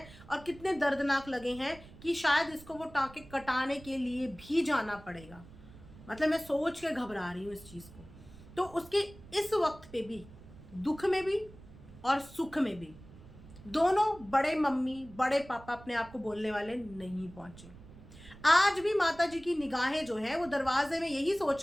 और कितने दर्दनाक लगे हैं कि शायद इसको वो टांके कटाने के लिए भी जाना पड़ेगा। मतलब मैं सोच के घबरा रही हूँ इस चीज़ को। तो उसके इस वक्त पे भी, दुख में भी और सुख में भी, दोनों बड़े मम्मी बड़े पापा अपने आप को बोलने वाले नहीं पहुंचे। आज भी माता जी की निगाहें जो है वो दरवाजे में यही सोच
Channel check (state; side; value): noise; right; rumble, 19 dB below the sound